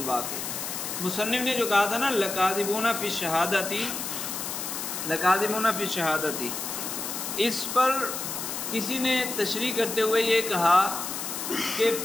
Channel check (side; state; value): left; noise; hiss, 5 dB below the sound